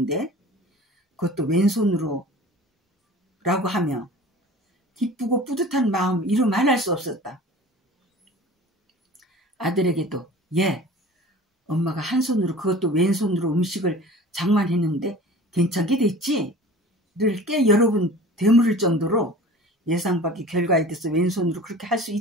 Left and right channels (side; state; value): both; normal; correlation 0.41